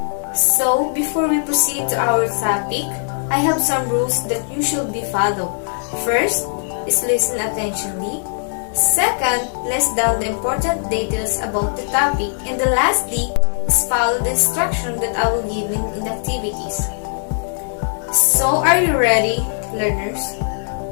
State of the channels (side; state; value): right; silent; 62 dB below the other